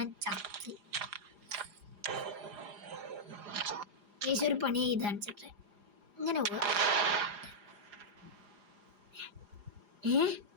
ചത്ത്. ഗൈസ്, ഒരു പണി ചെയ്ത് കാണിച്ചിട്ടെ ഇങ്ങനെ പോവാ.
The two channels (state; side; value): late; left; 4.9 ms